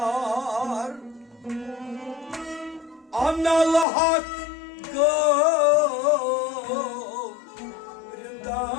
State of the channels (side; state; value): right; drops out; at 3.9 s